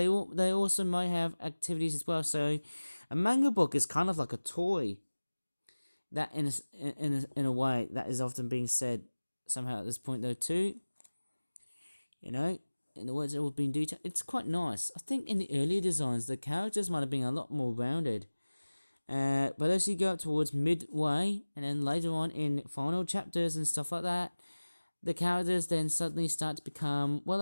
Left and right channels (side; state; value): both; inverted; correlation -1.00